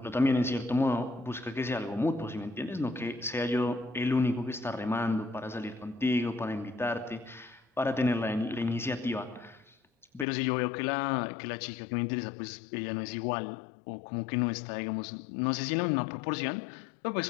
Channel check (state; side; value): drops out; right; at 10.2 s